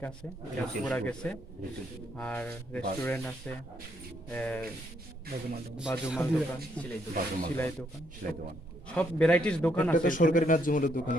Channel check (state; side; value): normal; both; correlation 0.73